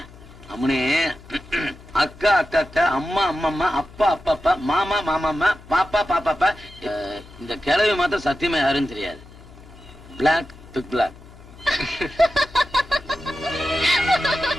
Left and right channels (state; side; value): noise; left; hum, 20 dB below the sound